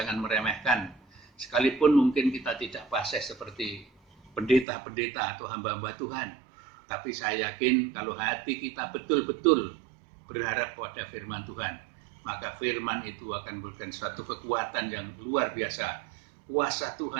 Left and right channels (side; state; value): left; drops out; at 4.7 s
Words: meremehkan. Sekalipun mungkin kita tidak fasih seperti pendeta-pendeta atau hamba-hamba Tuhan, tapi saya yakin kalau hati kita betul-betul berharap pada firman Tuhan, maka firman itu akan memberikan suatu kekuatan yang luar biasa. Kuasa